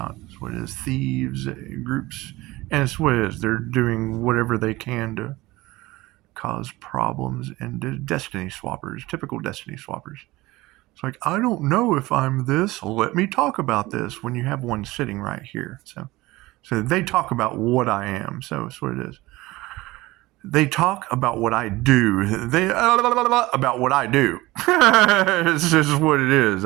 That's what it is. Thieves, groups, and it's what it is. They're doing whatever they can to cause problems, and destiny swappers, typical destiny swappers. It's like, I don't know if I'm this. Let me talk about this, when you have one sitting right here. So they talk about what I am. So that's what it is. They talk about what I do. About what I do. This is what it is.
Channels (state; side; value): quieter; left; 19.6 dB